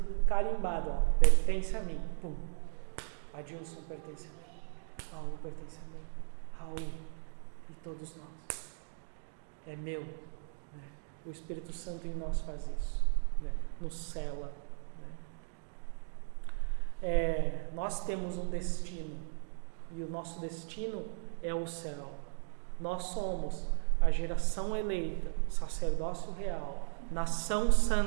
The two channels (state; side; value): silent; left; digital silence